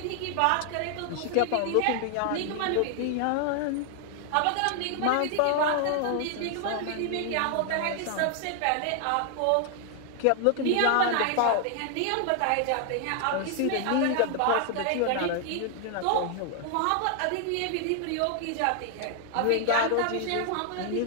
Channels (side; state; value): both; different; correlation 0.00